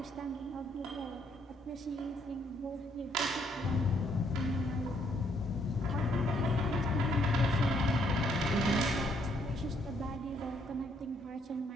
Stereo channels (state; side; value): normal; both; correlation 0.70